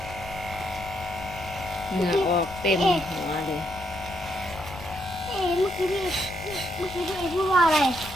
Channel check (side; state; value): left; noise; rumble, 14 dB below the sound